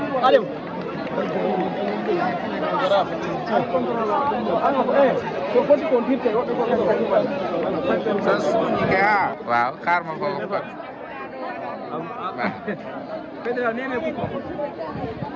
Aliou so foti ko dirte woɓɓe ko so suñi ke ha waaw xaar ma foofu kon fédéral nene kuko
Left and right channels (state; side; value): identical; both; correlation 1.00